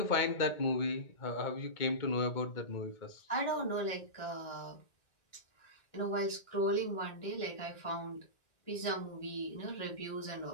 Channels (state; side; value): late; right; 1.6 ms